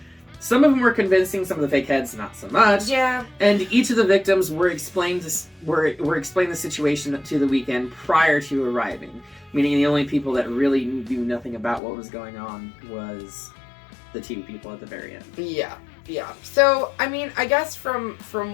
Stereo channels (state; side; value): drops out; right; at 11.8 s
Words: Some of them were convincing, some of the fake heads not so much. Yeah. And each of the victims were explained the situation to the weekend prior to arriving. Meaning the only people that really knew nothing about what was going on was the two people at the very end. Yeah. So, I mean, I guess from